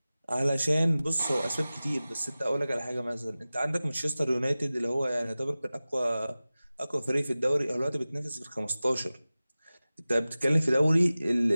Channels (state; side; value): inverted; both; correlation -0.97